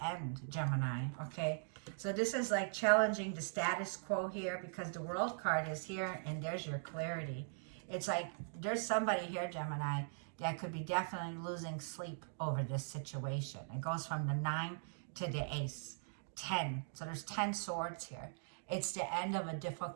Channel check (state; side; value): silent; left; digital silence